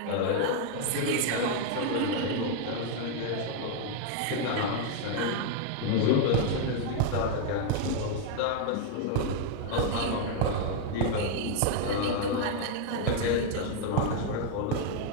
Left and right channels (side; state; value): both; different; correlation 0.00